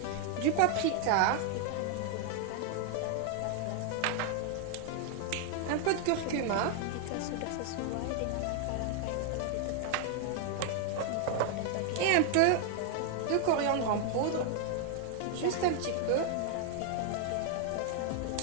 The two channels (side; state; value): both; different; correlation 0.00